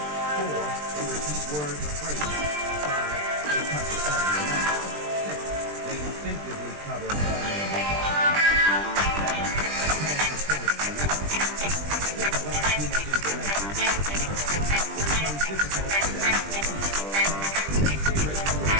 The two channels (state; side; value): late; left; 20 ms